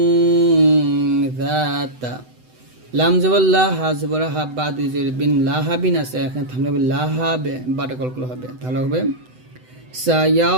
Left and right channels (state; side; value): late; left; 7.9 ms